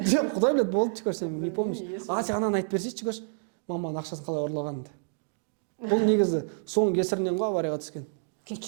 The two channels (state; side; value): silent; left; digital silence